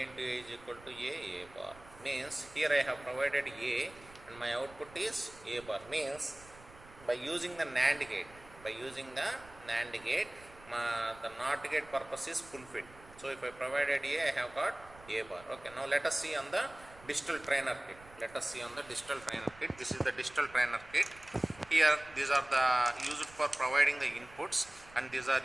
into A is equal to A bar. Means here I have provided A and my output is A bar. Means by using the NAND gate, the NOT gate purpose is fulfilled. So if I provided A, I have got A bar. Okay, now let us see on the digital trainer kit. This is the digital trainer kit. Here these are the used for providing the inputs and these are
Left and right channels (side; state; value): right; noise; rumble, 21 dB below the sound